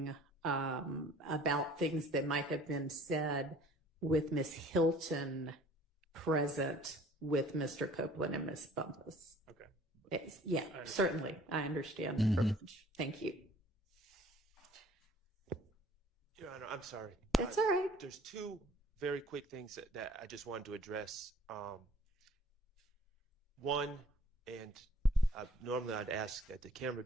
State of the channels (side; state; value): both; normal; correlation 0.52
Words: about things that might have been said with Ms. Hilton present with Mr. Copeland and Ms. Bumpus. Okay. Yeah, certainly. I understand the privilege. Thank you. Your Honor, I'm sorry. That's all right. There's two very quick things that I just wanted to address. One, and normally I'd ask that the camera